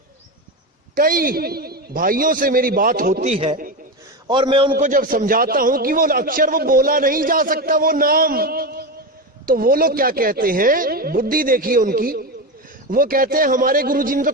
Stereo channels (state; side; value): normal; both; correlation 0.17